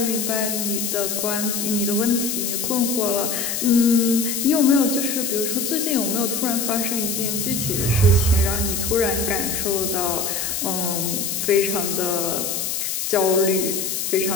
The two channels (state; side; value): noise; left; hiss, 2 dB below the sound